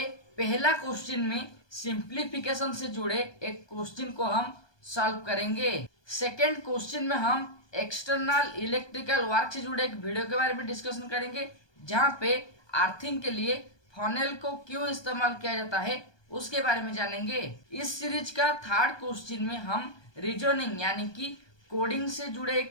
पहला क्वेश्चन में सिंप्लीफिकेशन से जुड़े एक क्वेश्चन को हम सॉल्व करेंगे। सेकेंड क्वेश्चन में हम एक्सटर्नल इलेक्ट्रिकल वर्क से जुड़े एक वीडियो के बारे में डिस्कशन करेंगे, जहां पे अर्थिंग के लिए फनेल को क्यों इस्तेमाल किया जाता है उसके बारे में जानेंगे। इस सीरीज का थर्ड क्वेश्चन में हम रीजनिंग यानी कि कोडिंग से जुड़े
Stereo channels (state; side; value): late; right; 1.2 ms